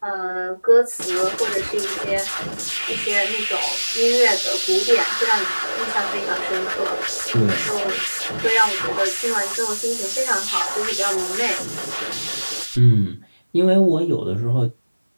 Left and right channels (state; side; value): inverted; both; correlation -1.00